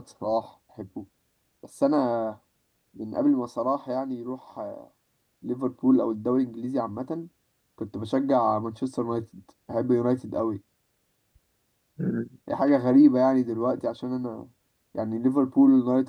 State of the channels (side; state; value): both; identical; correlation 1.00